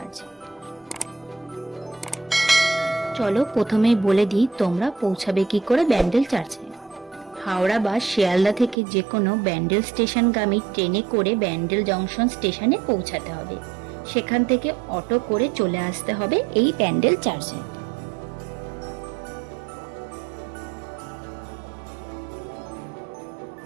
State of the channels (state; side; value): drops out; left; at 8.8 s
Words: চলো প্রথমেই বলে দিই তোমরা পৌঁছাবে কি করে ব্যান্ডেল চার্চে। হাওড়া বা শিয়ালদা থেকে যে কোনো ব্যান্ডেল স্টেশনগামী ট্রেনে করে ব্যান্ডেল জংশন স্টেশনে পৌঁছাতে হবে। সেখান থেকে অটো করে চলে আসতে হবে এই ব্যান্ডেল চার্চে।